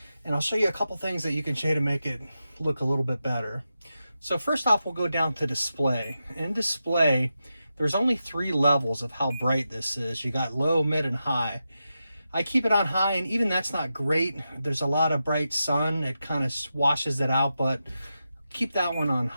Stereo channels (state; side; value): inverted; both; correlation -0.89